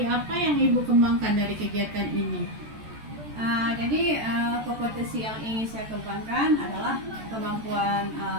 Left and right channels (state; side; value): late; left; 14 ms